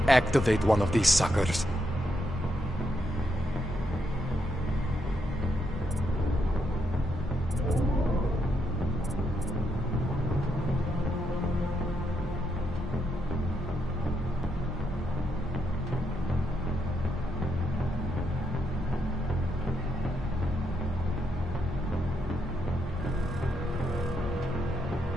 activate one of these suckers.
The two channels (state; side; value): normal; both; correlation 0.79